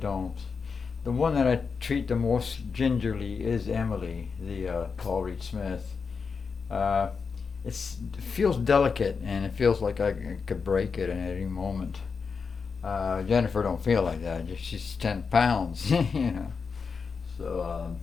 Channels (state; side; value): quieter; right; 5.3 dB